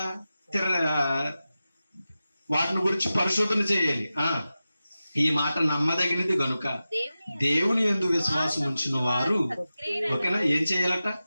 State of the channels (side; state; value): both; inverted; correlation -0.94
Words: వాటిని గురించి పరిశోధన చేయాలి. ఈ మాట నమ్మదగినది గనుక దేవుని యందు విశ్వాసం ఉంచిన వారు ఓకేనా ఏం చేయాలట?